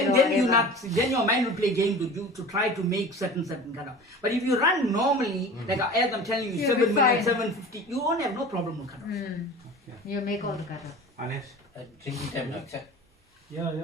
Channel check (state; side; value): normal; both; correlation 0.38